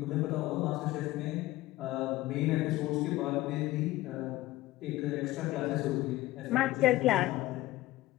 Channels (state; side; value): quieter; right; 17.1 dB